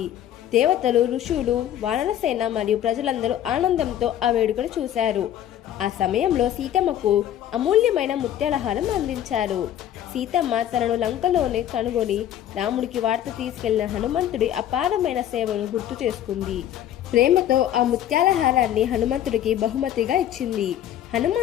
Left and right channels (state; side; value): quieter; right; 11.2 dB